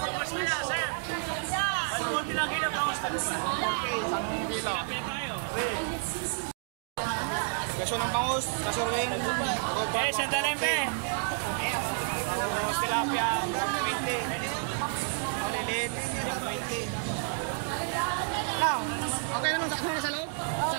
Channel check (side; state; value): left; silent; 58 dB below the other